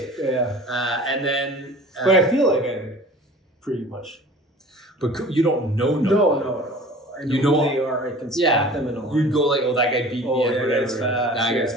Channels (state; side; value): normal; both; correlation 0.43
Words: Yeah. And then... but I feel like I'm pretty much... But you don't know. No. I know You know who they are. I can spot them in a line. You'd go like, oh, that guy beat me. Yeah, that guy's fast. That